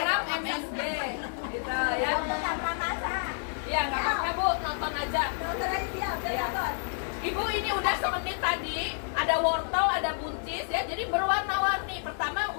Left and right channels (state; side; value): silent; right; 58 dB below the other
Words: MSG. Gitu ya. tanpa masak. Iya, nggak apa-apa Bu, nonton aja. Dokter aja siap, Iya. nonton. Ibu ini udah semenit tadi, ada wortel, ada buncis ya, jadi berwarna-warni. Pertama